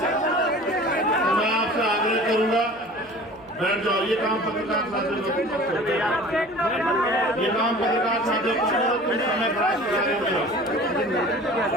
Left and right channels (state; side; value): noise; right; hum, 27 dB below the sound